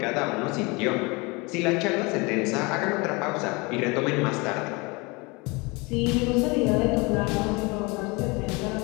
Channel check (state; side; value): quieter; right; 26.7 dB